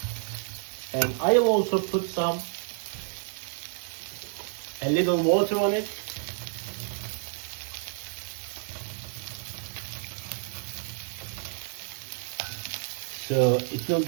And I will also put a little water on it. So it will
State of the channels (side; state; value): left; silent; 58 dB below the other